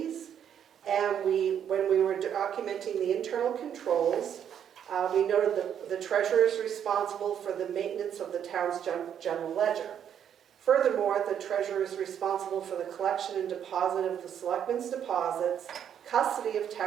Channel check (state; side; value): quieter; left; 9.0 dB